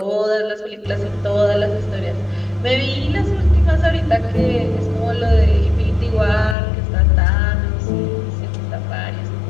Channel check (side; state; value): right; drops out; at 6.6 s